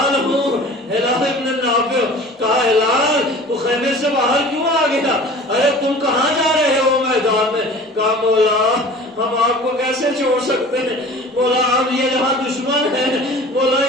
ہوں، ہلال ابن نافع۔ کہا ہلال تو خیمے سے باہر کیوں آ گیا؟ ارے تم کہاں جا رہے ہو میدان میں؟ کہا مولا ہم آپ کو کیسے چھوڑ سکتے ہیں، مولا آپ یہ یہاں دشمن ہیں، مولا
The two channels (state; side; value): normal; both; correlation 0.42